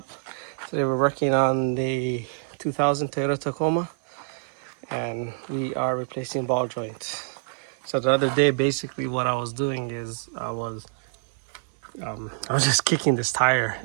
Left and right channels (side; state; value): left; silent; 61 dB below the other